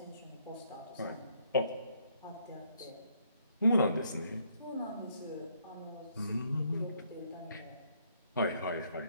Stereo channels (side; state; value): both; inverted; correlation -0.69